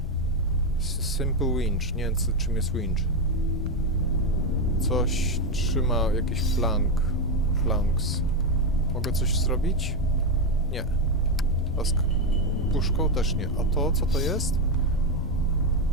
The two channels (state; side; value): normal; both; correlation 0.07